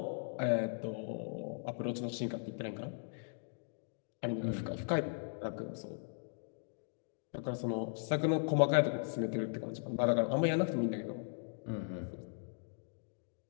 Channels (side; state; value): right; silent; digital silence